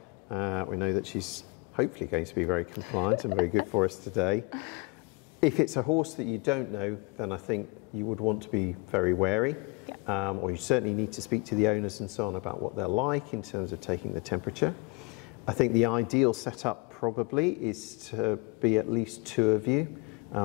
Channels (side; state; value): right; quieter; 29.4 dB